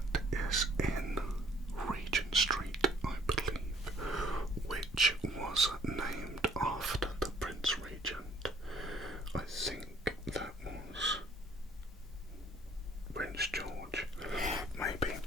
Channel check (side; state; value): both; normal; correlation 0.59